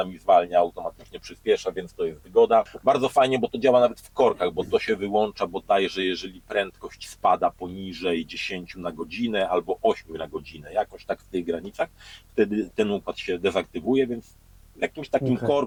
zwalnia, automatycznie przyspiesza, więc to jest wygoda. Bardzo fajnie, bo to działa nawet w korkach, bo to się wyłącza bodajże, jeżeli prędkość spada poniżej 10 na godzinę albo 8 na godzinę, jakoś tak w tych granicach, wtedy ten układ się dezaktywuje, więc w jakimś takim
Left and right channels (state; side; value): identical; both; correlation 1.00